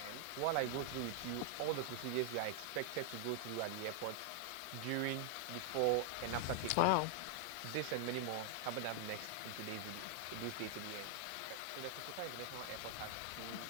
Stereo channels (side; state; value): both; different; correlation 0.00